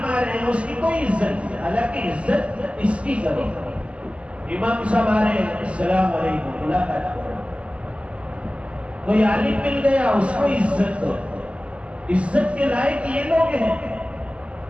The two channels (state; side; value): late; left; 0.058 ms